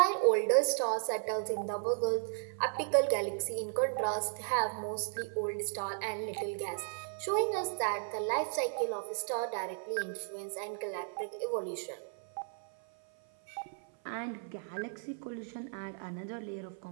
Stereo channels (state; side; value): silent; left; 55 dB below the other